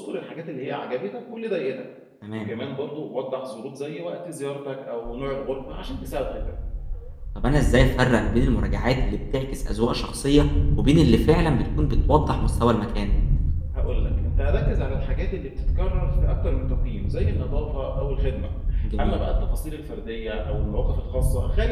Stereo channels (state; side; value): identical; both; correlation 1.00